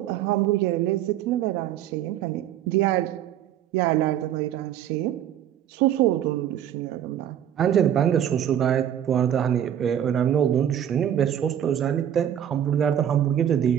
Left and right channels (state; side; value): quieter; left; 10.3 dB